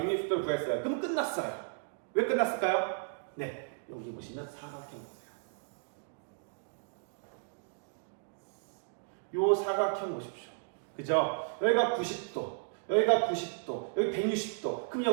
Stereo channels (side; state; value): left; silent; digital silence